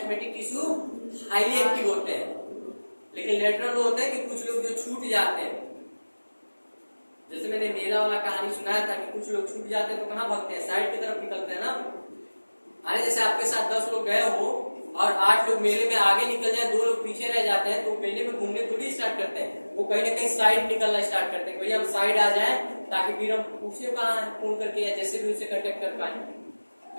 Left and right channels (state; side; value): inverted; both; correlation -1.00